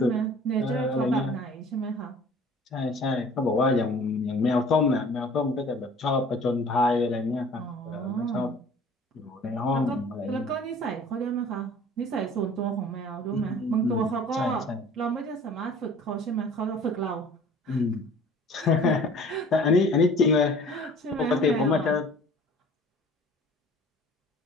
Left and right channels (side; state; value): both; normal; correlation 0.48